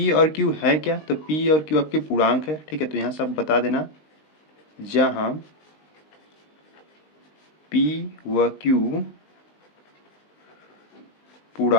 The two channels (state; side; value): late; right; 19 ms